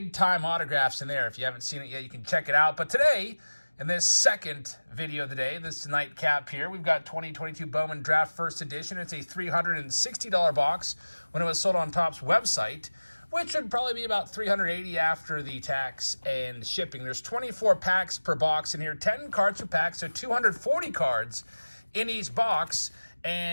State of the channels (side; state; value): both; inverted; correlation -1.00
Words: time autographs in there. If you haven't seen it yet, you can check it out. But today, in this second video of the day, this nightcap here, we've got 2022 Bowman Draft First Edition. It's a $360 box when it was sold on Topps website, which would probably be about $380 after the tax and shipping. There's 24 packs per box in here, 10 cards per pack, so 240 cards in each box.